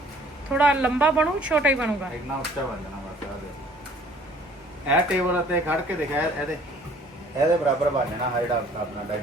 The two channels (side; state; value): both; normal; correlation 0.55